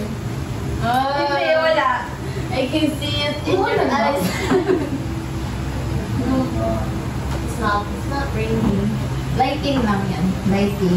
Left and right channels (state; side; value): identical; both; correlation 1.00